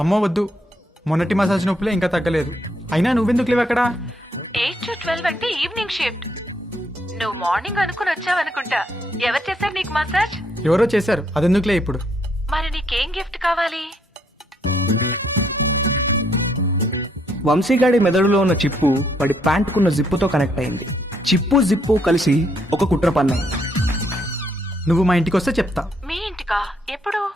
అమ్మో వద్దు, మొన్నటి మసాజ్ నొప్పులే ఇంకా తగ్గలేదు. అయినా నువ్వెందుకు లేవు అక్కడ? 8 to 12 అంటే ఈవినింగ్ షిఫ్ట్. నువ్వు మార్నింగ్ అనుకుని వచ్చావనుకుంటా. ఎవరు చేశారు నీకు మసాజ్? ఎవరో చేశారు, అదెందుకులే ఇప్పుడు. మరి నీకేం గిఫ్ట్ కావాలి? వంశీగాడి మెదడులో ఉన్న చిప్పు వాడి ప్యాంటుకున్న జిప్పుతో కనెక్ట్ అయింది. చిప్పు జిప్పు కలిసి ఒక కుట్ర పన్నాయి. నువ్వు మా ఇంటికి వస్తే చెప్తా. మీ ఇంటికా? ఎప్పుడు?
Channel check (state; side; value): normal; both; correlation 0.72